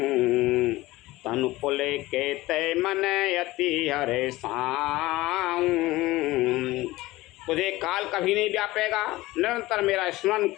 तनु पुले के तय मन अति हरे साऊं। तुझे काल कभी नहीं व्यापेगा, निरंतर मेरा स्मरण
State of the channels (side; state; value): right; quieter; 18.6 dB